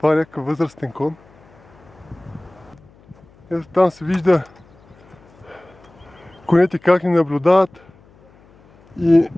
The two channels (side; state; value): left; noise; hum, 28 dB below the sound